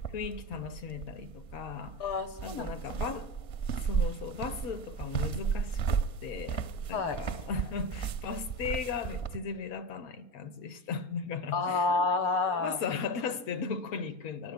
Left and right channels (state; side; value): late; right; 4.3 ms